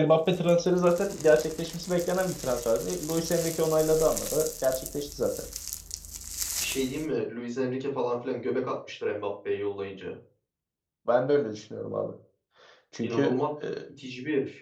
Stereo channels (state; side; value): identical; both; correlation 1.00